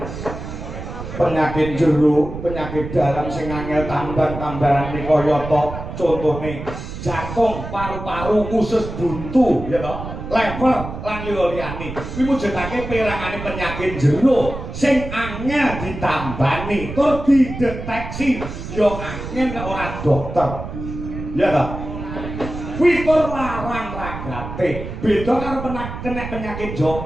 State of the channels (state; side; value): noise; right; rumble, 8 dB below the sound